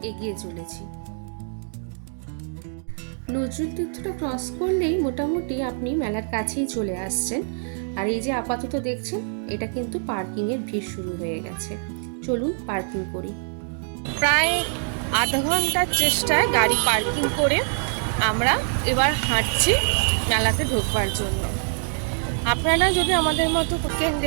এগিয়ে চলেছি। নজরুল তীর্থটা ক্রস করলেই মোটামুটি আপনি মেলার কাছেই চলে আসছেন। আর এই যে আপাতত দেখছেন, এটা কিন্তু পার্কিং এর ভিড় শুরু হয়ে গেছে। চলুন পার্কিং করি। প্রায় আধা ঘন্টার চেষ্টায় গাড়ি পার্কিং করে আমরা এবার হাঁটছি মেলাতে ঢোকবার জন্য। আপনারা যদি আমাদের মতো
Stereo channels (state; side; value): silent; left; 58 dB below the other